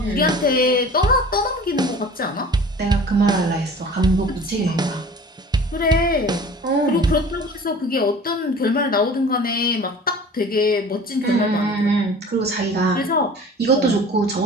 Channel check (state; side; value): normal; both; correlation 0.43